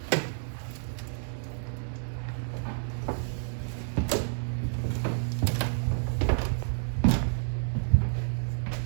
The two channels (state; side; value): silent; left; digital silence